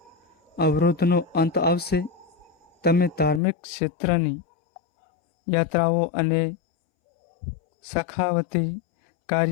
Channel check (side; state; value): right; drops out; at 3.4 s